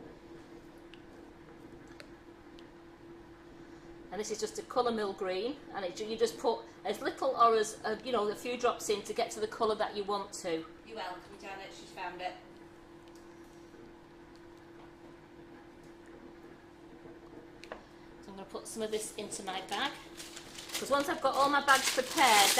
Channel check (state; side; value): identical; both; correlation 1.00